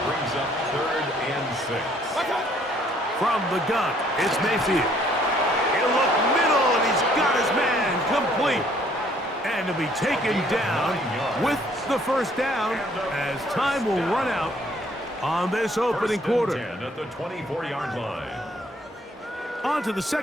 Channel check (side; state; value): both; normal; correlation 0.63